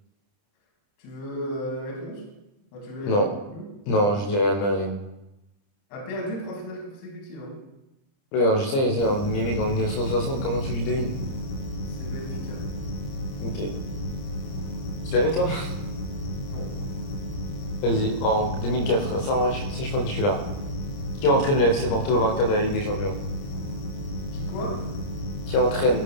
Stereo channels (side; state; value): right; late; 30 ms